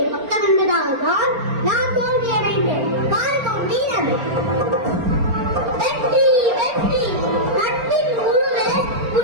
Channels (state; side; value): late; left; 4.4 ms